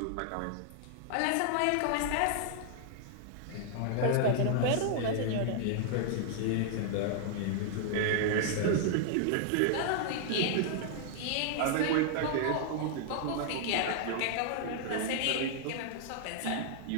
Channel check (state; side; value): different; both; correlation 0.00